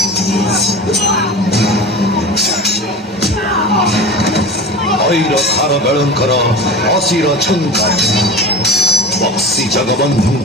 ऐर खार बेळंकर असिर छंकार बक्सी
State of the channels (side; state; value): both; normal; correlation 0.32